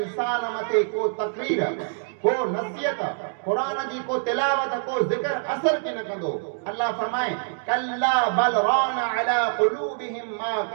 मथे को तकरीर को नसीहत कुरान जी को तिलावत को जिक्र असर के न कंदो अल्लाह फरमाए कल्ला बल रान अला कुलूबिहिम मा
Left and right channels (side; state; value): left; silent; digital silence